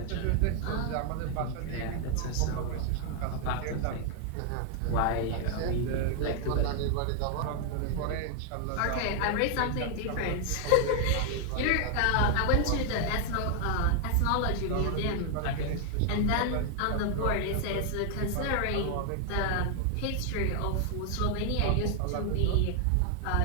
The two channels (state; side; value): different; both; correlation 0.00